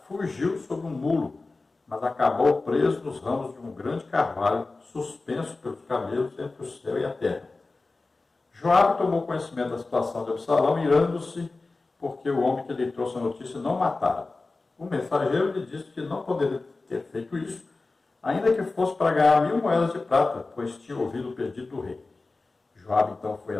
fugiu sobre um mulo, mas acabou preso nos ramos de um grande carvalho, suspenso pelos camelos entre o céu e a terra. Joabe tomou conhecimento da situação de Absalão, irando-se, porque o homem que lhe trouxe a notícia não o matara. O mensageiro lhe disse que não poderia ter feito isso, ainda que fosse para ganhar 1.000 moedas de prata, pois tinha ouvido o pedido do rei. Joabe então foi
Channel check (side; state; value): right; quieter; 3.5 dB